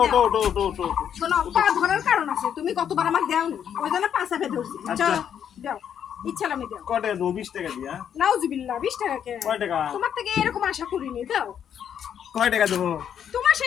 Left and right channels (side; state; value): right; quieter; 8.8 dB